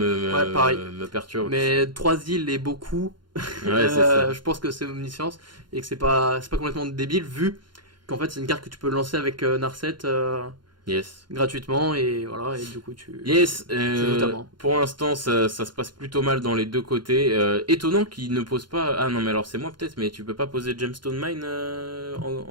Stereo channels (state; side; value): late; left; 0.71 ms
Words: pareil. me perturbe. Mais 3 îles et beaucoup. Ouais, c'est ça. Je pense que c'est Omniscience et que c'est pas complètement débile vu qu'en fait c'est une carte que tu peux lancer avec Narset Yes. gratuitement et voilà, et du coup tu... Yes, notamment. pour l'instant ça se passe plutôt mal dans les deux côtés. Étonnant qu'il ne pose pas... Ah non mais alors c'est moi peut-être, mais tu peux pas poser Gemstone Mine